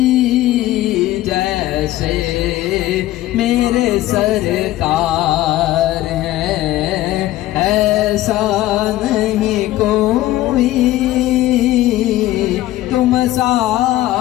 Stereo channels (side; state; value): right; quieter; 15.5 dB